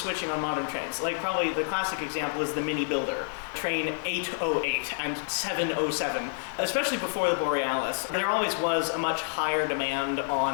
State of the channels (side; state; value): right; silent; digital silence